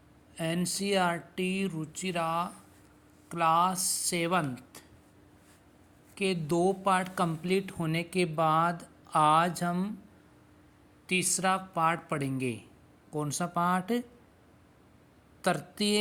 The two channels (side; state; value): both; identical; correlation 1.00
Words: एनसीईआरटी रुचिरा क्लास 7 के 2 पार्ट कंप्लीट होने के बाद आज हम तीसरा पार्ट पढ़ेंगे। कौन सा पार्ट?